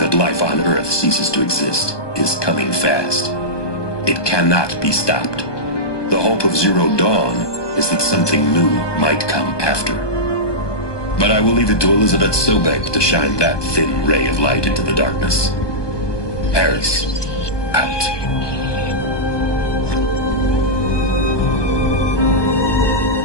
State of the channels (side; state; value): right; late; 1.2 ms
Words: life on Earth ceases to exist is coming fast. It cannot be stopped. The hope of Zero Dawn is that something new might come after. But I will leave it to Elizabeth Sobek to shine that thin ray of light into the darkness. Paris, out.